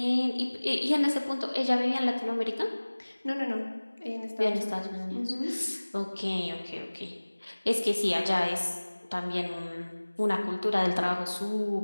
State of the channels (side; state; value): both; inverted; correlation -1.00